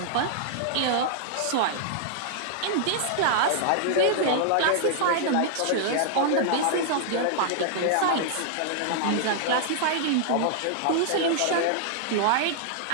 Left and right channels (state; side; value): different; both; correlation -0.01